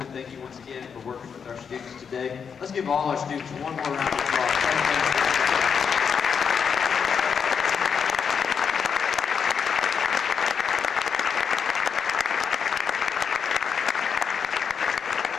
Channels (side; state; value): right; quieter; 6.6 dB